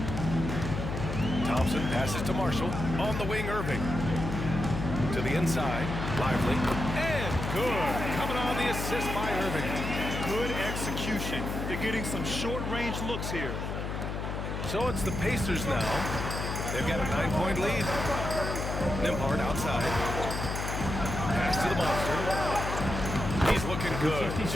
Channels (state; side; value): noise; left; hum, 4 dB below the sound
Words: Thompson passes to Marshall. On the wing, Irving. To the inside. Lively. And good. Coming on the assist by Irving. Good execution. They're getting some short-range looks here. So it's the Pacers now. They've got a 9-point lead. Nembhard outside. Pass to the Monster. He's looking good.